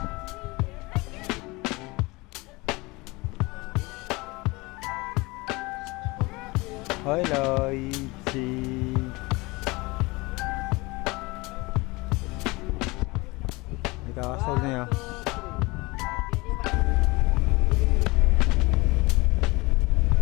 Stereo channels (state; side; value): quieter; right; 23.7 dB